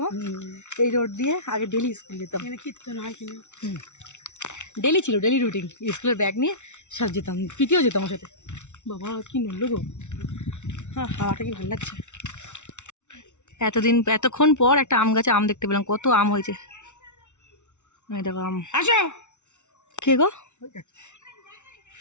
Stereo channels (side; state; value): right; late; 0.83 ms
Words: মা, এই রোড দিয়ে আগে ডেইলি স্কুল যেতাম। এখানে কীর্তন হয় কিনা, ডেইলি ছিল, ডেইলি রুটিন। স্কুলের ব্যাগ নিয়ে সব যেতাম, পিটিও যেতাম ওর সাথে। বাবা কি নড়লো গো! হ্যাঁ, হাওয়াটা কি ভালো লাগছে। এতক্ষণ পর একটা আম গাছে আম দেখতে পেলাম, কত আম হয়েছে। এই দেখো আম। আসো। কে গো?